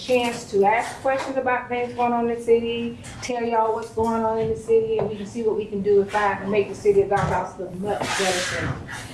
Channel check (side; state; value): both; identical; correlation 1.00